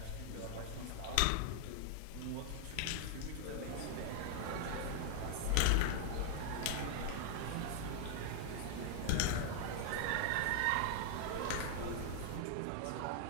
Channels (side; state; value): both; different; correlation 0.00